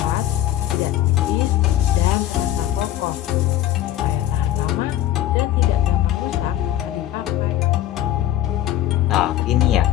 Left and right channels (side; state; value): right; quieter; 12.9 dB